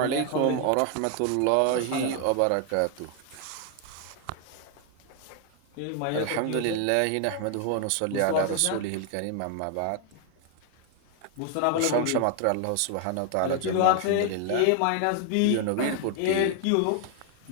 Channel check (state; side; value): different; both; correlation 0.01